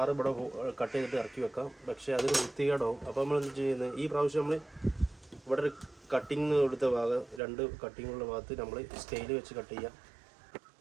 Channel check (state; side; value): drops out; left; at 7.4 s